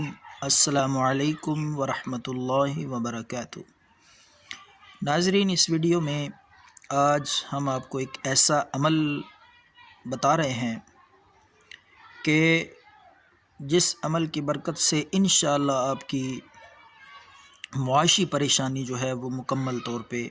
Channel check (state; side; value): identical; both; correlation 1.00